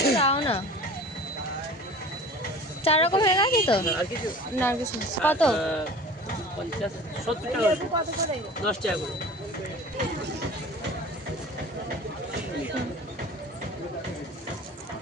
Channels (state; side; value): normal; both; correlation 0.41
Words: দাও না। 4 রকম হয়ে গেছে তো? আর কিছু না আর কিছু না। কত? 50 70 টাকা 10 টাকা করে।